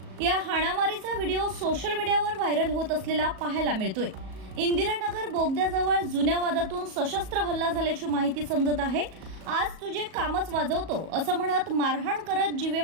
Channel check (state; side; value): late; left; 37 ms